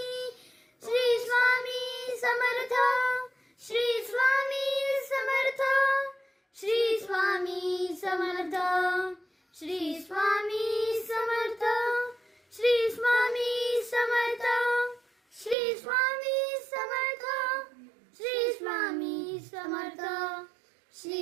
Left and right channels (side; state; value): left; drops out; at 15.6 s